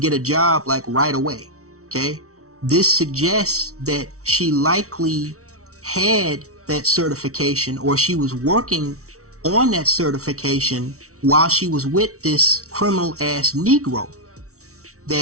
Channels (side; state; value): left; late; 0.64 ms